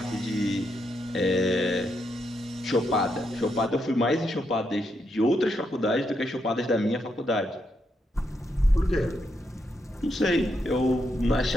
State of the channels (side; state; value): both; normal; correlation 0.80